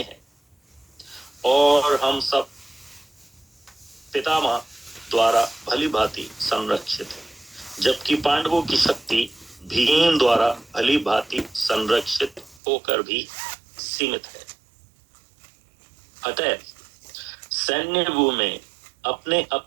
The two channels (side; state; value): left; drops out; at 12.6 s